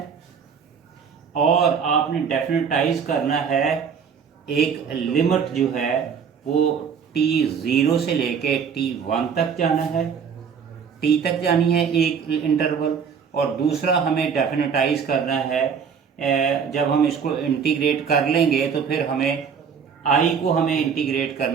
और आपने डेफिनेटाइज करना है एक लिमिट जो है वो t0 से लेके t1 तक जाना है, t तक जानी है एक इंटरवल। और दूसरा हमें डेफिनेटाइज करना है जब हम इसको इंटीग्रेट कर लेंगे तो फिर हमें i को हमें इंटीग्रेट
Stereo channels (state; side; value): quieter; left; 6.6 dB